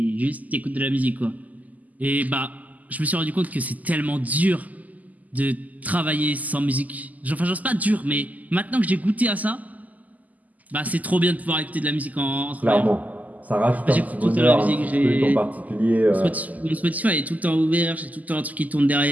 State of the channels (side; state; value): left; late; 0.079 ms